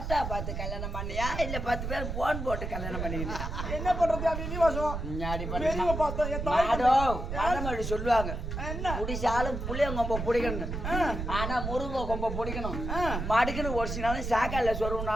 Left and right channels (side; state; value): right; noise; rumble, 4 dB below the sound